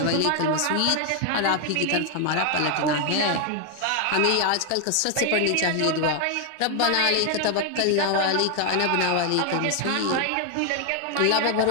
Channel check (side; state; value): both; different; correlation 0.00